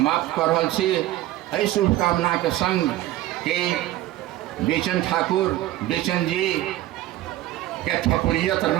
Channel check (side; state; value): left; quieter; 15.1 dB